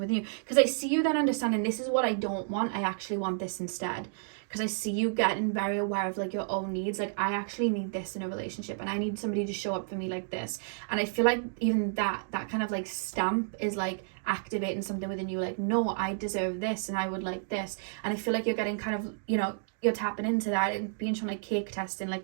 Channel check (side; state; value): left; silent; digital silence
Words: within you. Because I see you then understanding, this is what I don't want, I actually want this instead. Because I see you getting very aware of like your own needs. Like, I actually need this in a relationship, and I need somebody to show up for me like this. And I feel like even that kind of like stamp is like activating something within you, like, no, I deserve this and I would like this. And I feel like you're getting kind of, you know, you're tapping into that and being shown like cake testing,